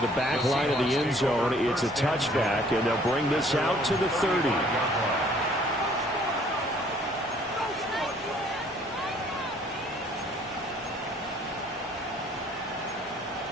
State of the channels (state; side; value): normal; both; correlation 0.59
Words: the back line of the end zone. It's a touchback, and they'll bring this out to the 30.